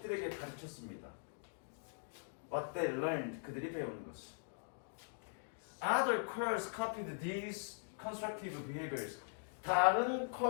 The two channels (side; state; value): right; silent; digital silence